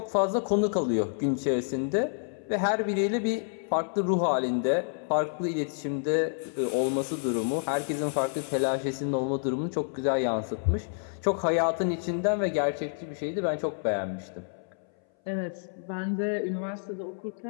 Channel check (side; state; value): right; silent; 59 dB below the other